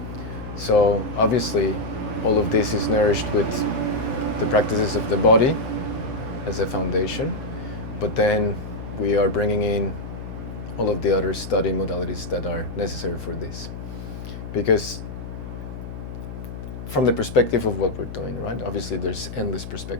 So obviously all of this is nourished with the practices of the body as a foundation, but then we are bringing in all of the other study modalities that are necessary for this. Because from the perspective of what we're doing, right? Obviously there's endless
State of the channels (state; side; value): noise; left; hum, 9 dB below the sound